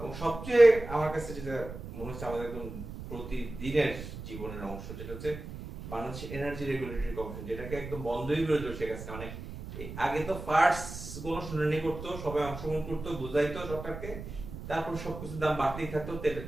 সবচেয়ে আমার কাছে যেটা মনে হচ্ছে আমাদের একদম প্রতিদিনের জীবনের অংশ, যেটা হচ্ছে বাংলাদেশ এনার্জি রেগুলেটরি কমিশন, যেটাকে একদম বন্ধই করে দিল শেখ হাসিনা। মানে আগে তো ফার্স্ট কোনো শুনানি করতো, সবাই অংশগ্রহণ করতো, বুঝাইতো সরকারকে, তারপর সবকিছুর দাম বাড়তেই থাকতো।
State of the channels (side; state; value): right; noise; rumble, 10 dB below the sound